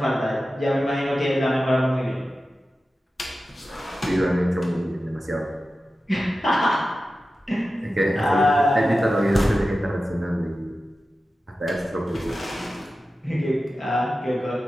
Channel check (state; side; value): normal; both; correlation 0.93